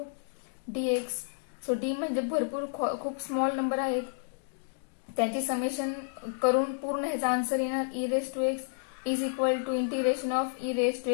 D X. So D म्हणजे भरपूर खूप small number आहेत, त्यांची summation करून पूर्ण ह्याचा आन्सर येणार E raise to x is equal to integration of E raise to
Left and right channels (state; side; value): silent; right; digital silence